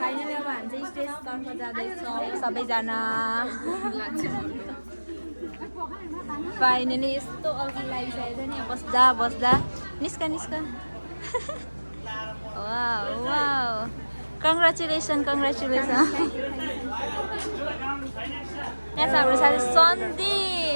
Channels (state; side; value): inverted; both; correlation -1.00